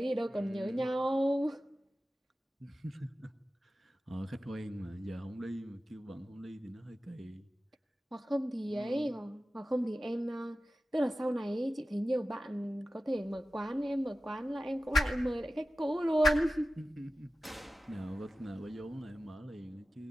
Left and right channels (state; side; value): normal; both; correlation 0.95